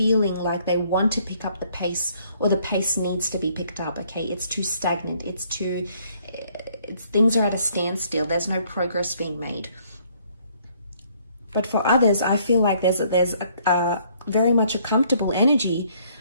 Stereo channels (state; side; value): inverted; both; correlation -0.64